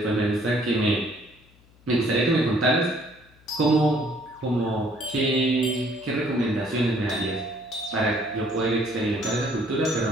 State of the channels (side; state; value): left; noise; hum, 29 dB below the sound